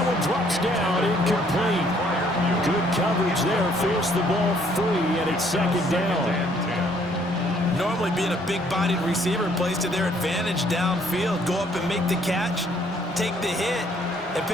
one drops down, incomplete. Good coverage there, forced the ball free, and it's 2nd down. Normally being a big-bodied receiver plays to their advantage downfield. Go up and make the catch, take the hit, and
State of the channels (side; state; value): both; normal; correlation 0.64